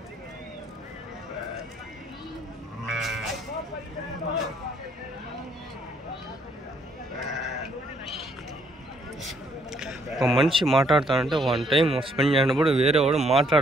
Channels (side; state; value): both; normal; correlation 0.68